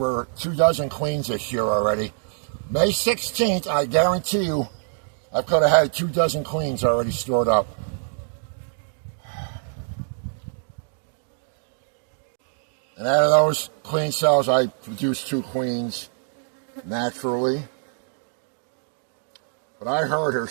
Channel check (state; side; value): silent; left; digital silence